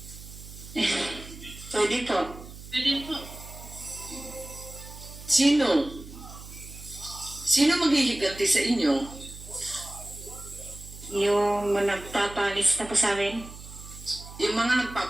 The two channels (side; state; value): right; noise; hum, 15 dB below the sound